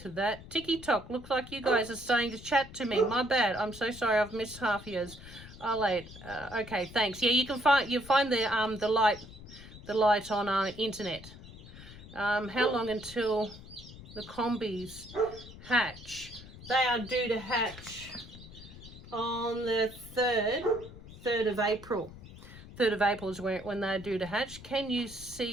that. TikTok, looks like you guys are starting to chat to me. My bad. I'm so sorry. I've missed half yours. Oh, late. Okay, thanks. Yeah, you find the light on internet. How long until the combies hatch? They are due to hatch on the 3rd of April. 3rd of April is when they're due to hatch. Can you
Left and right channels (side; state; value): left; noise; rumble, 16 dB below the sound